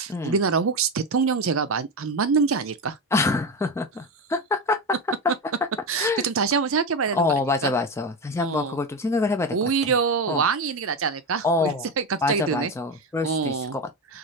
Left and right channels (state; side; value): normal; both; correlation 0.17